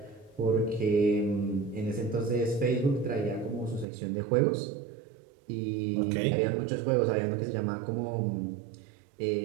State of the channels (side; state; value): left; drops out; at 3.9 s